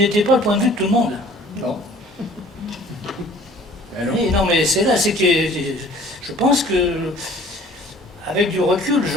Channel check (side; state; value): both; normal; correlation 0.51